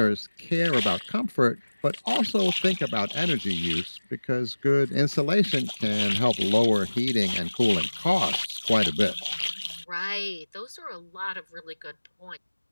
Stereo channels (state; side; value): inverted; both; correlation -1.00